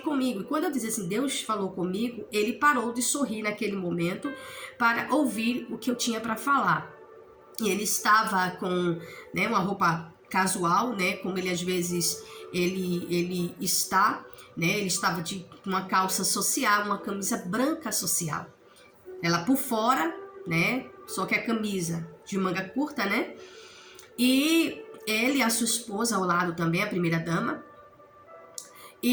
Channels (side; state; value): both; identical; correlation 1.00